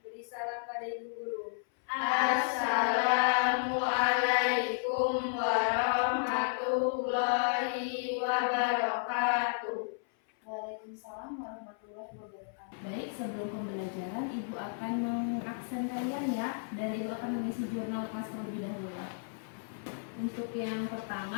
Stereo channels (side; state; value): right; silent; 56 dB below the other